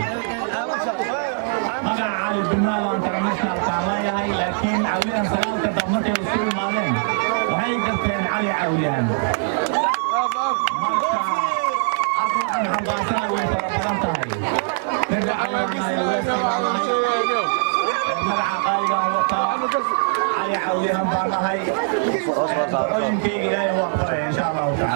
magaca cali dumaal oo internationalkaan leeyahay laakiin caawiyahan sagaalka dab markay isu imaadeen waxay garteen cali caawiyahan marka hadda waxaan xambaasana way fara badan tahay ninka cali baan nahay weesay baan nahay magaca qaaligaan wataa cali caawiyahan baan nahay ducooyinkayga ilaahay waa aqbalaya insha allahu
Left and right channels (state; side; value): silent; left; digital silence